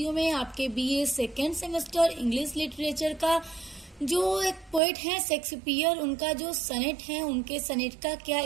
में आपके BA second semester English literature का जो एक पोएट है शेक्सपियर, उनका जो सनेट है, उनके सनेट का क्या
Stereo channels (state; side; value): drops out; left; at 4.8 s